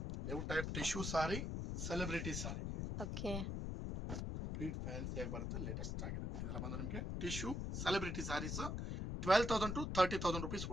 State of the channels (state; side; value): noise; left; rumble, 2 dB below the sound